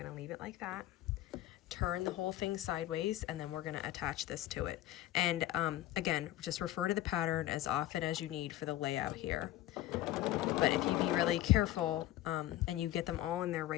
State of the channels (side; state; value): right; quieter; 14.6 dB